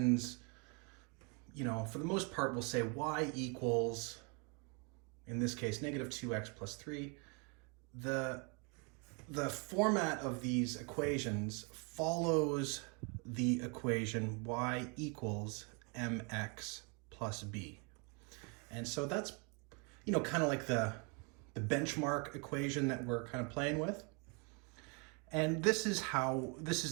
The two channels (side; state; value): left; quieter; 33.6 dB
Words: for the most part, will say y equals, in this case, negative 2x plus 3. The format of these equations follows the equation y equals mx plus b. And so that's, kind of like the benchmark equation that we're kind of playing with. And this is